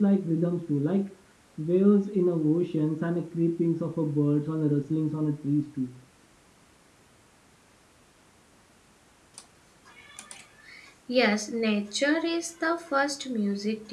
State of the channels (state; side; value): identical; both; correlation 1.00